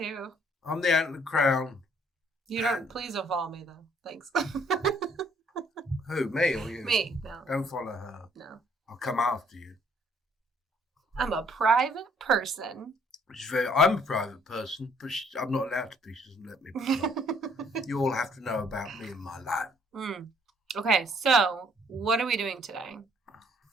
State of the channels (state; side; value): normal; both; correlation 0.63